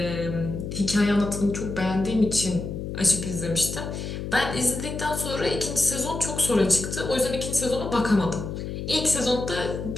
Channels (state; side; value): noise; left; hum, 6 dB below the sound